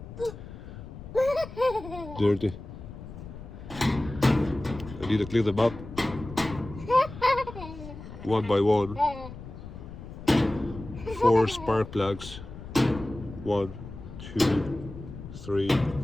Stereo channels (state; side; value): noise; left; rumble, 13 dB below the sound